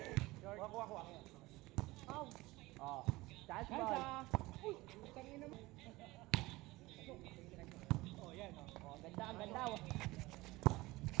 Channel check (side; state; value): left; quieter; 20.3 dB